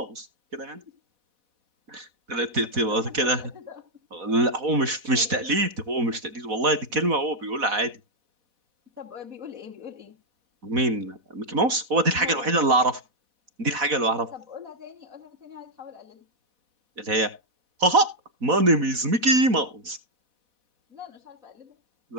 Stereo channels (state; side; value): late; left; 4.1 ms